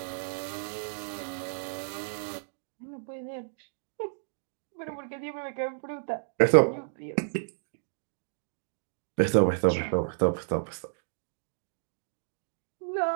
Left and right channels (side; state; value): left; silent; digital silence